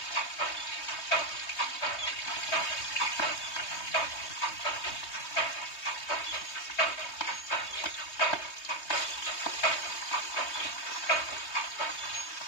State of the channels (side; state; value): right; late; 3.2 ms